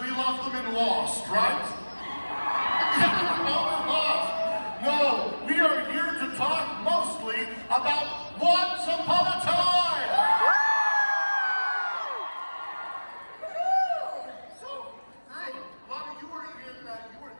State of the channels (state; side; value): inverted; both; correlation -1.00